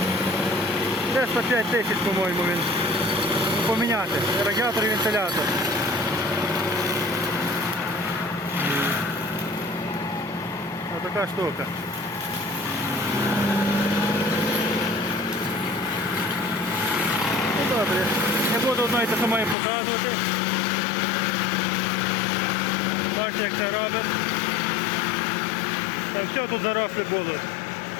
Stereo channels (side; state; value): right; drops out; at 19.6 s